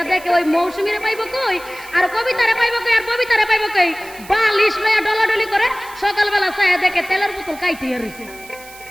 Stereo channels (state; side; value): noise; right; hiss, 19 dB below the sound